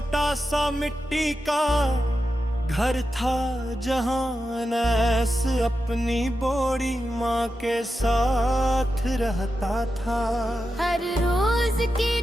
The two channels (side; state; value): both; normal; correlation 0.90